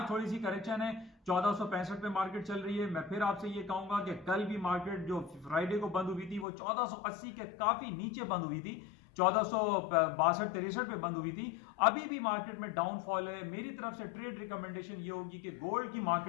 थोड़ी सी करेक्शन है, 1465 पे मार्केट चल रही है। मैं फिर आपसे ये कहूंगा कि कल भी मार्केट जो फ्राइडे को बंद हुई थी वो 1480 के काफी नीचे बंद हुई थी, 1462-63 पे बंद हुई थी। अभी भी मार्केट में डाउनफॉल है। मेरी तरफ से ट्रेड रिकमेंडेशन ये होगी कि गोल्ड की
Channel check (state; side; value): drops out; right; at 6.5 s